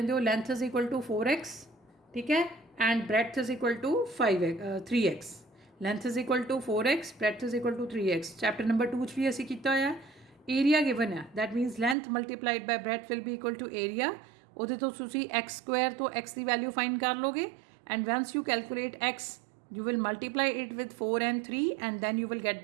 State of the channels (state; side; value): drops out; left; at 12.0 s